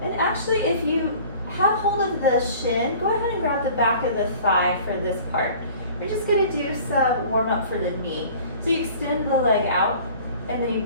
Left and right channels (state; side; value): inverted; both; correlation -0.47